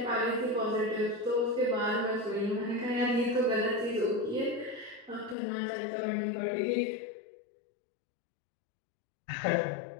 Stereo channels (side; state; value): right; drops out; at 5.4 s